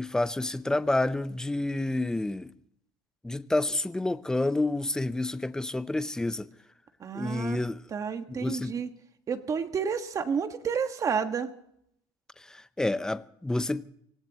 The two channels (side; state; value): both; normal; correlation 0.81